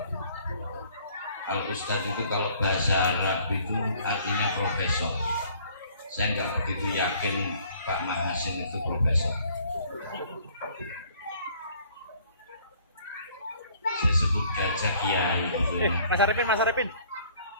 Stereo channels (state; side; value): inverted; both; correlation -0.58